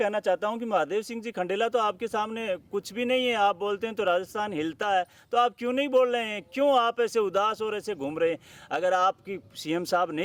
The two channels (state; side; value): identical; both; correlation 1.00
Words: चाहता हूं कि महादेव सिंह जी खंडेला तो आपके सामने कुछ भी नहीं है। आप बोलते हैं तो राजस्थान हिलता है, तो आप क्यों नहीं बोल रहे हैं? क्यों आप ऐसे उदास और ऐसे घूम रहे हैं? अगर आपकी सीएम साहब